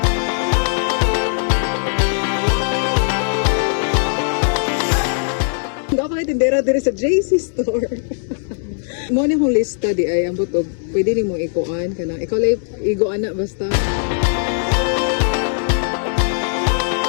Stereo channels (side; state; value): right; silent; 62 dB below the other